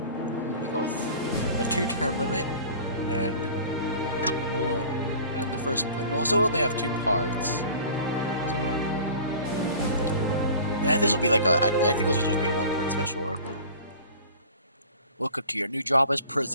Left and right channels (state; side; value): inverted; both; correlation -0.43